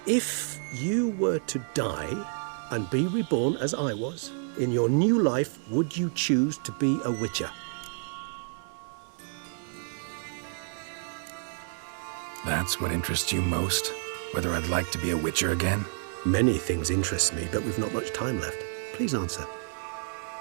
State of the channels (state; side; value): silent; left; 58 dB below the other